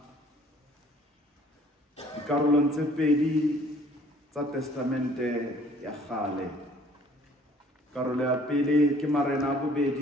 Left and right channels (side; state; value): both; normal; correlation 0.56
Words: dikarolong tse pedi tsa testamente ya kgale. Karolo ya pele ke Marena a